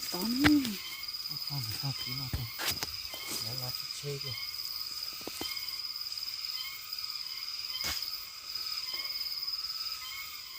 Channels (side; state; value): both; identical; correlation 1.00